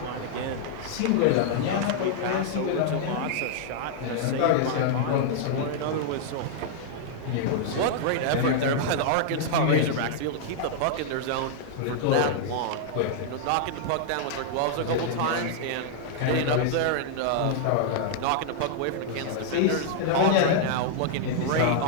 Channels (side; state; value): both; different; correlation -0.01